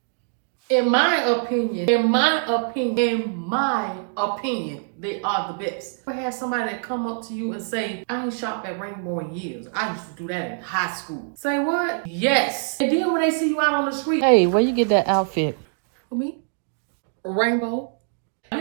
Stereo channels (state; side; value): silent; left; digital silence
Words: In my opinion, they are the best. I had somebody that come up to you and say, I ain't shopped at Rainbow in years. I used to do that in high school. Say what? Yes. And then when they see you out on the street, hey, where you get that outfit? For me? Rainbow. Y'all